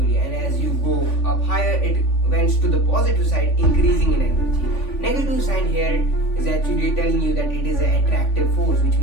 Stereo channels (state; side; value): late; right; 3.5 ms